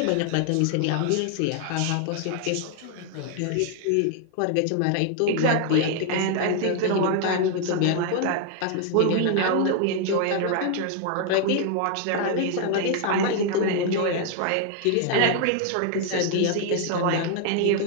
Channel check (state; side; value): different; both; correlation 0.00